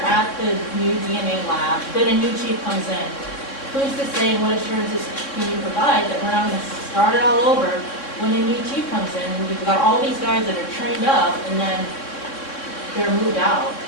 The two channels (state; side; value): late; right; 3.6 ms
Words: at the new DNA lab, then a new chief comes in. Who's to say, and what assurances can you provide that we're not going to start it all over when a new chief comes in? You've got all these guys that are trained up, and then they're moved out.